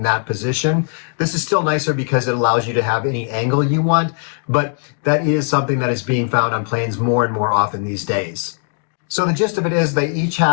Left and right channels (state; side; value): silent; right; 60 dB below the other